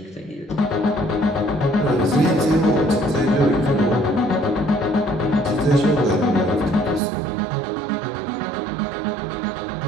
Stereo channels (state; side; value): drops out; left; at 7.0 s